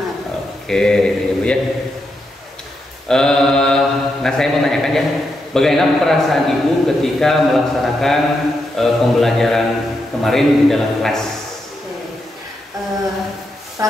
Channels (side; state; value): both; normal; correlation 0.83